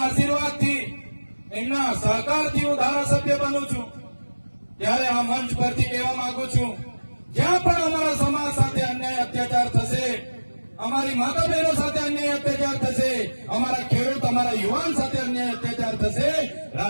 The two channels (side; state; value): both; inverted; correlation -1.00